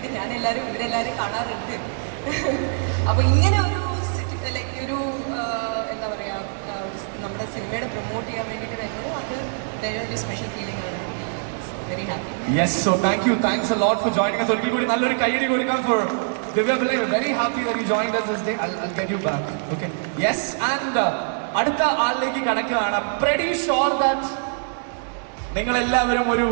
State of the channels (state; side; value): silent; left; digital silence